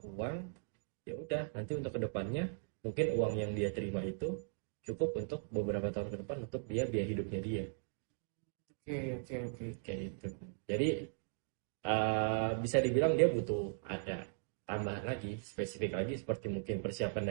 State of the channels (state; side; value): silent; left; digital silence